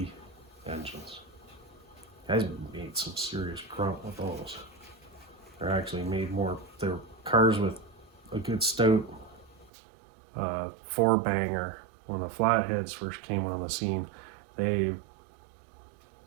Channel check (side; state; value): left; drops out; at 9.7 s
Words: engines. Guys made some serious grunt with those. They're actually made more, they're cars with a good stout four banger. When the flatheads first came on the scene, they